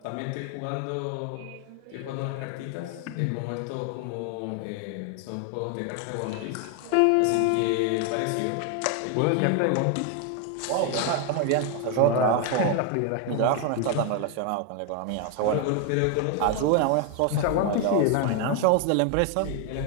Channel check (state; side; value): different; both; correlation 0.01